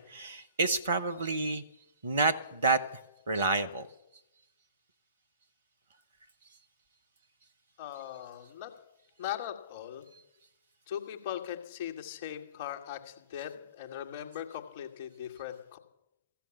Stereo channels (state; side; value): inverted; both; correlation -0.48